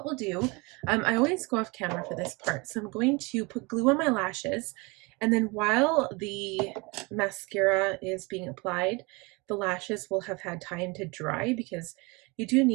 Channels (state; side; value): quieter; left; 27.1 dB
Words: we'll do, I always go off camera for this part. So I'm going to put glue on my lashes. And then while the mascara is being applied, the lashes will have had time to dry because you do